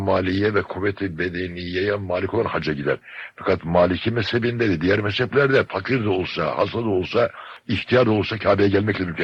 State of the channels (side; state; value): both; identical; correlation 1.00